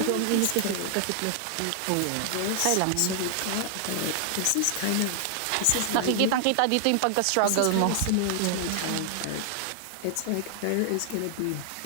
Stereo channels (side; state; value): both; different; correlation 0.00